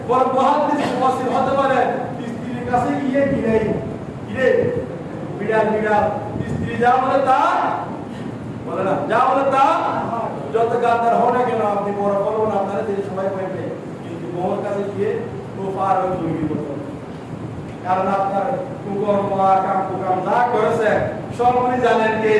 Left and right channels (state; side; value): identical; both; correlation 1.00